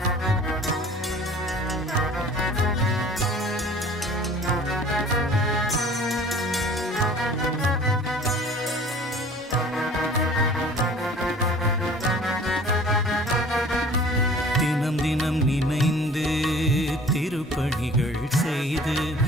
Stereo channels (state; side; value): normal; both; correlation 0.48